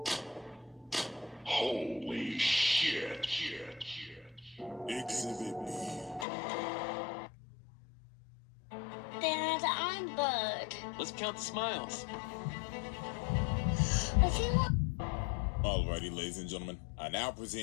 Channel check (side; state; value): right; drops out; at 6.2 s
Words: Holy shit. Exhibit B. Dad, I'm Bud. Let's count the smiles. If you want. Alrighty, ladies and gentlemen, I now